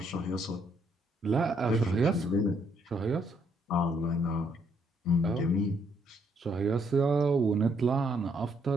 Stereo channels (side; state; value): both; normal; correlation 0.71